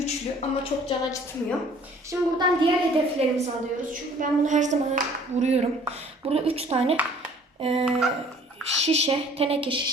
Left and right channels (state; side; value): normal; both; correlation 0.54